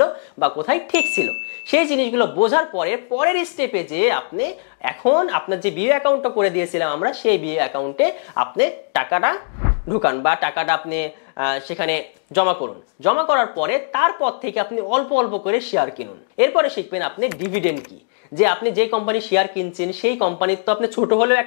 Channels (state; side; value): silent; right; digital silence